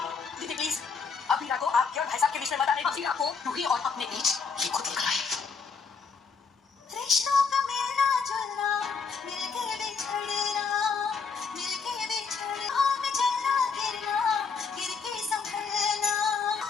दीदी प्लीज अबीरा को आपके और भाई साहब के बीच में मत आने। अबीरा को रूही और अपने बीच ये खुद ही कराए। रिश्तों का मिलना जुलना, मिलके बिछड़ना, मिलके बिछड़ना, में चलना गिरना, गिर के संभलना।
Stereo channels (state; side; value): quieter; right; 5.2 dB